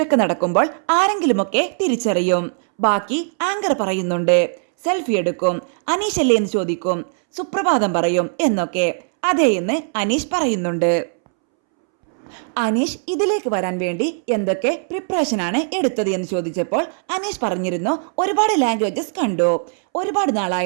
നടക്കുമ്പോൾ ആരെങ്കിലുമൊക്കെ തിരിച്ചറിയും. ബാക്കി ആങ്കർ പറയുന്നുണ്ട് സെൽഫി എടുക്കും, അനീഷ് അല്ലേ എന്ന് ചോദിക്കും, സുപ്രഭാതം പറയും എന്നൊക്കെ. അതേ എന്ന് അനീഷ് പറയുന്നുണ്ട്. അനീഷ് ഇതിലേക്ക് വരാൻ വേണ്ടി എന്തൊക്കെ പ്രിപ്പറേഷനാണ് എടുത്തത് എന്ന് ചോദിച്ചപ്പോൾ അനീഷ് പറഞ്ഞിരുന്നു ഒരുപാട് ലാംഗ്വേജസ് കണ്ടു, ഒരുപാട്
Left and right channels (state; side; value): silent; left; 66 dB below the other